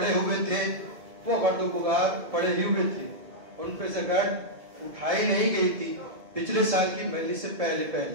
ہوئے تھے وہ گرد و غبار پڑے ہی ہوئے تھے، ان پہ سے گرد اٹھائی نہیں گئی تھی۔ پچھلے سال کی مجلس سے پہلے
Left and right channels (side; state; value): left; late; 1.7 ms